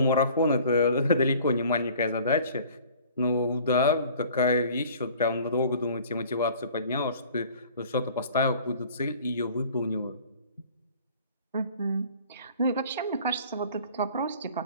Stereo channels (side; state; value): both; inverted; correlation -0.49